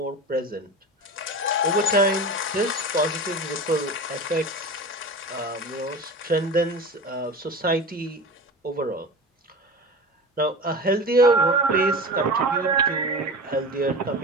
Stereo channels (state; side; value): normal; both; correlation 0.31